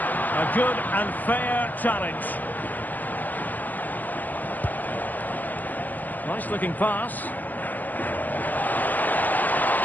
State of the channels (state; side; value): late; right; 0.084 ms